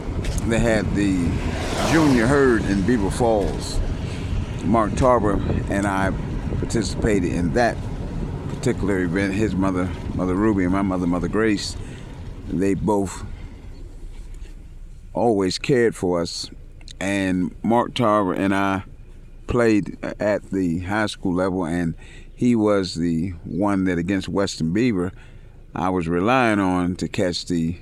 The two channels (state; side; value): identical; both; correlation 1.00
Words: they had the Junior Herd in Beaver Falls. Mark Tarver and I participated in that particular event. His mother, Mother Ruby, and my mother, Mother Grace, they both always cared for us. And Mark Tarver and I played at the high school level, and he was the one that against Western Beaver I was relying on to catch the